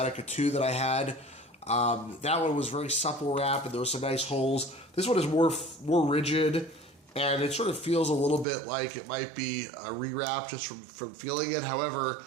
2 that I had. That one was very supple wrap, and there were some nice holes. This one is more rigid, and it sort of feels a little bit like it might be a rewrap just from feeling it. However,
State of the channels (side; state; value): left; drops out; at 8.5 s